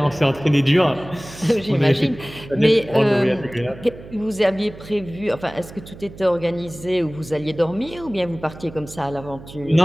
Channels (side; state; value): right; noise; hum, 17 dB below the sound